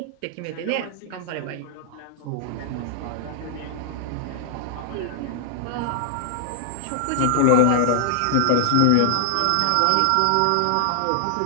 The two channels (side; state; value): both; different; correlation -0.01